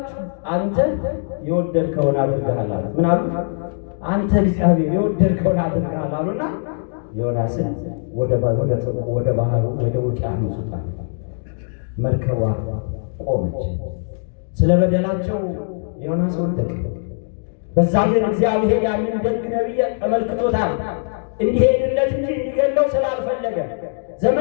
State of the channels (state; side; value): silent; right; digital silence